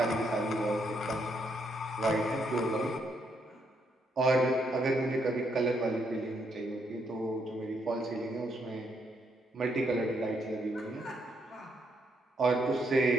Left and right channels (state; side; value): normal; both; correlation 0.75